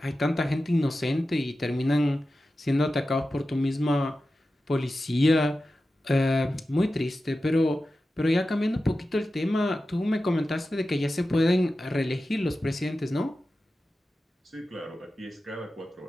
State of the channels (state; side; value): normal; both; correlation 0.93